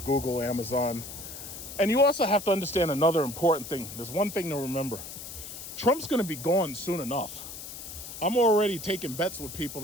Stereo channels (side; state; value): left; noise; hiss, 11 dB below the sound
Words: Google, Amazon. And you also have to understand another important thing. There's one thing to remember. Trump's going to be gone soon enough. I'm already taking bets with people